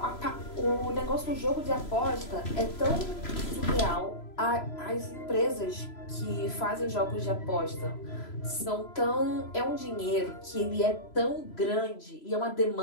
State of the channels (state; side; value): late; right; 3.0 ms